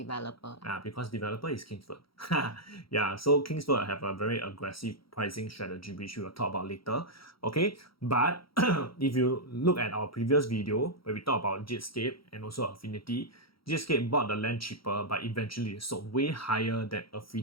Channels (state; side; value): late; right; 0.75 ms